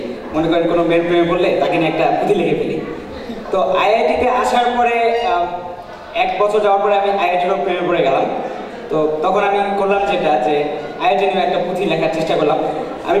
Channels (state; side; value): identical; both; correlation 1.00